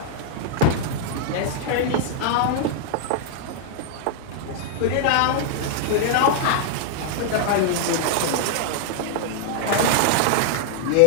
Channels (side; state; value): both; different; correlation 0.00